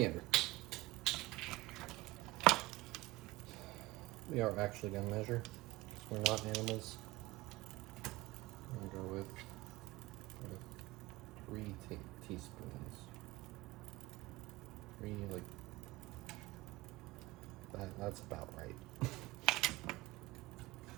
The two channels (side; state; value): left; quieter; 19.9 dB